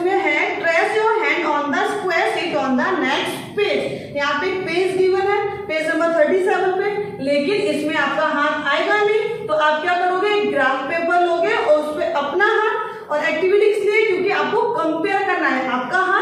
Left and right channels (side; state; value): both; identical; correlation 1.00